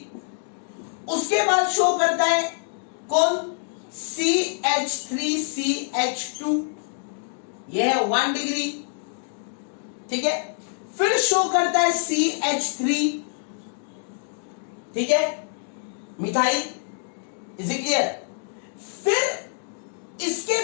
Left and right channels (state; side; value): silent; right; digital silence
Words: उसके बाद शो करता है कौन? CH3CH2, यह है 1 डिग्री। ठीक है, फिर शो करता है CH3। ठीक है, मिथाइल। Is it clear? फिर